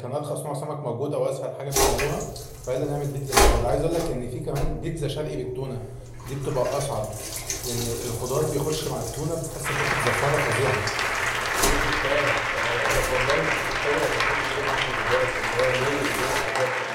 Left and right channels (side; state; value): both; identical; correlation 1.00